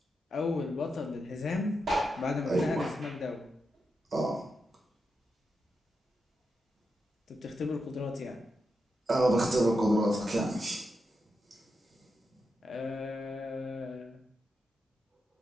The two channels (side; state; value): both; normal; correlation 0.86